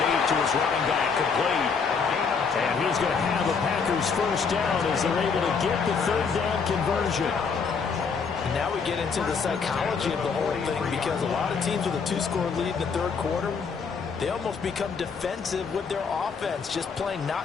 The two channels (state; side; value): quieter; right; 5.5 dB